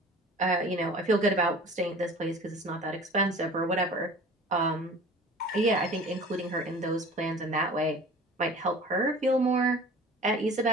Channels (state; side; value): normal; both; correlation 0.43